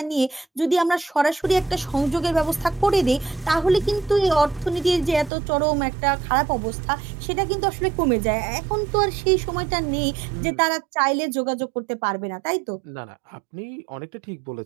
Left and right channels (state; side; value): drops out; left; at 5.3 s